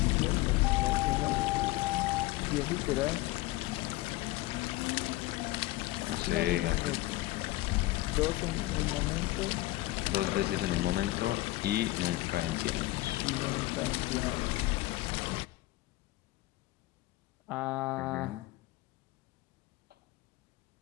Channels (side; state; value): right; quieter; 18.5 dB